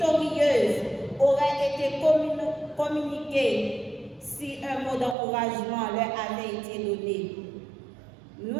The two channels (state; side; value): drops out; left; at 5.2 s